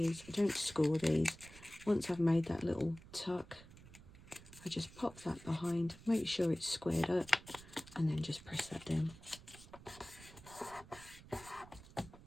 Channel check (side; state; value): right; noise; rumble, 19 dB below the sound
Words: I don't score these. Once I've made that little tuck, I just pop that behind, make sure it's squared up, and then just press that down.